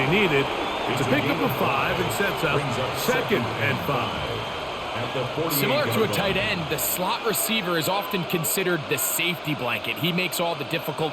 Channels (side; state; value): both; identical; correlation 1.00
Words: needed It's a pickup of 5 and sets up 2nd and 5. Similar to a tight end, the slot receiver is often considered the safety blanket. He makes all the